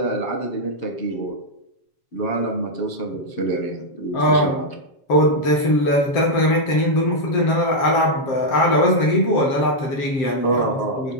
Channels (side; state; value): right; late; 7.4 ms